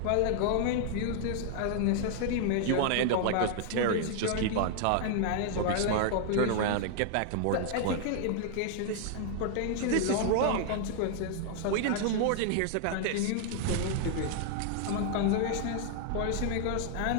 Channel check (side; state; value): both; different; correlation 0.00